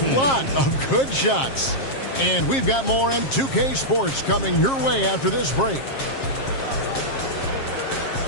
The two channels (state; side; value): late; right; 7.4 ms